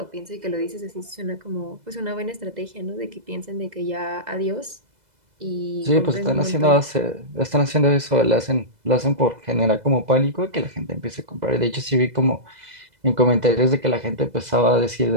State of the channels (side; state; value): left; late; 2.0 ms